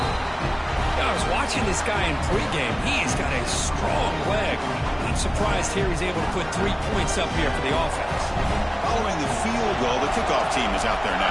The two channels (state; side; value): identical; both; correlation 1.00